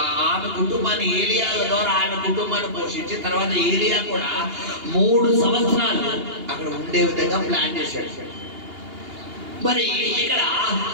ఆమె కుటుంబాన్ని ఏలియా ద్వారా ఆమె కుటుంబాన్ని పోషించి తర్వాత ఏలియా కూడా 3 సంవత్సరాలు అక్కడ ఉండే విధంగా ప్లాన్ చేశాడు. మరి ఇక్కడ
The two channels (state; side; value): late; left; 2.8 ms